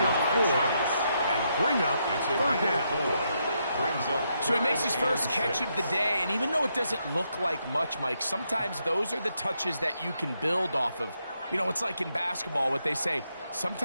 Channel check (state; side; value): inverted; both; correlation -0.79